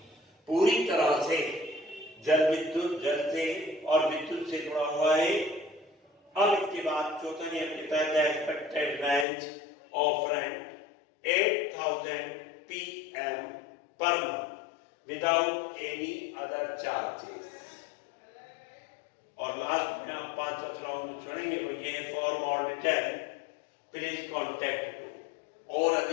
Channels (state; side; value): drops out; right; at 9.2 s